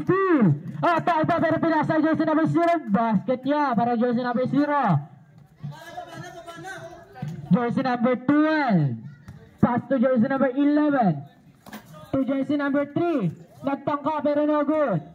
steal. Tayo pa pero pinasa jersey number 0. Basket niya para jersey number 0. Jersey number 12. Pass to jersey number 11. To jersey number 3. Nagtangka pero no good.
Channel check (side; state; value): both; identical; correlation 1.00